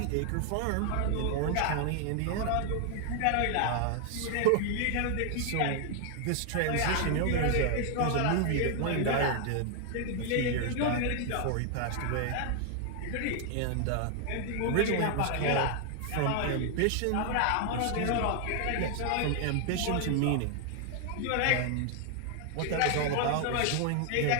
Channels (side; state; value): both; different; correlation 0.00